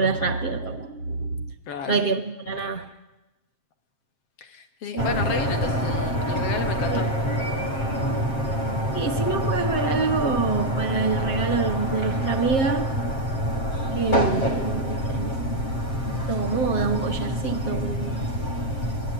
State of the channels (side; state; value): right; late; 7.6 ms